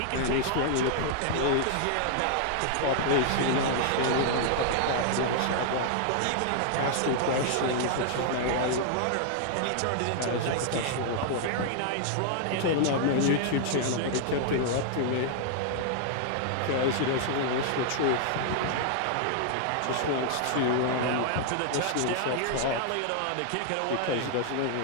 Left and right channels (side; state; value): both; different; correlation -0.01